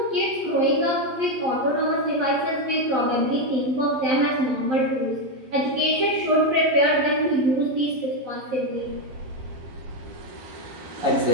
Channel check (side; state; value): left; late; 11 ms